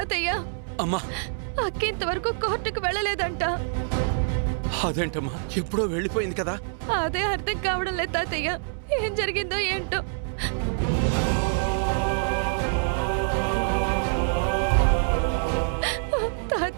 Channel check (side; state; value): left; silent; 61 dB below the other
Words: అమ్మా, అక్క ఇంతవరకు కోర్టుకు వెళ్ళలేదంట. అదేంటమ్మా, ఎప్పుడో వెళ్ళిపోయింది కదా. అదే అర్థం కావడం లేదు తాతయ్య, ఏం జరిగిందో ఏంటో.